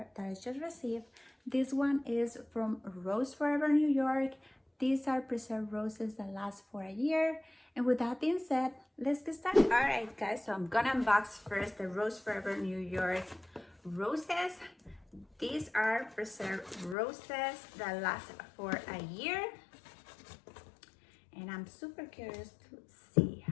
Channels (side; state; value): right; drops out; at 16.9 s